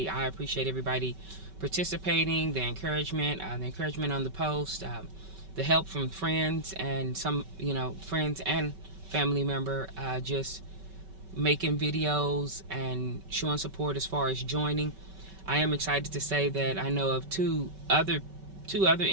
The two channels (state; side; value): late; left; 5.2 ms